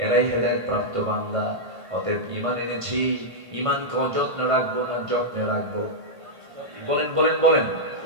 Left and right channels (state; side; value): late; left; 1.5 ms